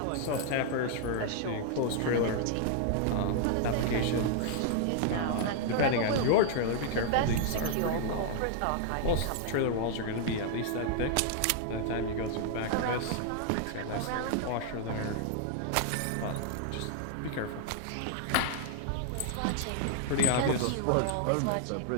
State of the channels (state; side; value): different; both; correlation 0.00